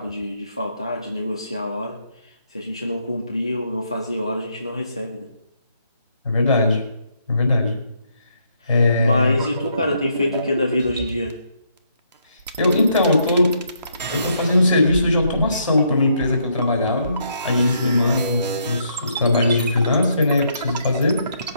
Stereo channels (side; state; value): both; inverted; correlation -0.73